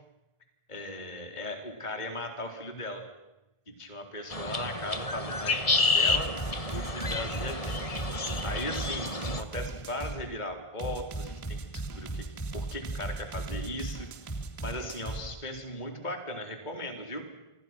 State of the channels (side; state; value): right; late; 1.5 ms